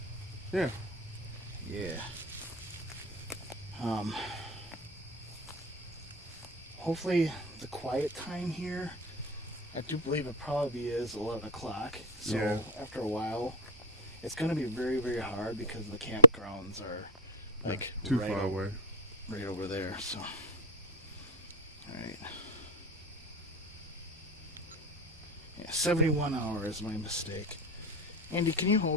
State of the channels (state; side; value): normal; both; correlation 0.03